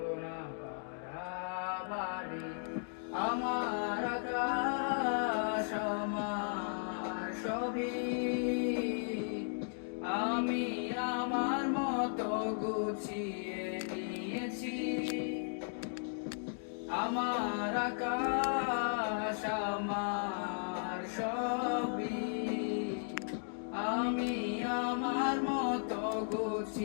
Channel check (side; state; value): right; silent; digital silence